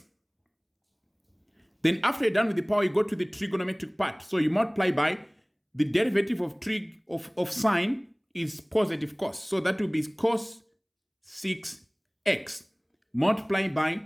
Then after you're done with the power, you go to the trigonometric part. So you multiply by the derivative of trig of sine is positive cos. So that will be cos 6x multiplied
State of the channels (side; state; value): both; identical; correlation 1.00